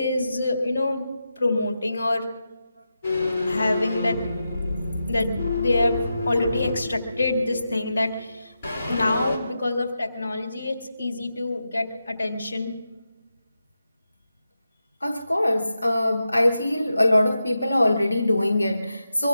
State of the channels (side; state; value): both; inverted; correlation -0.89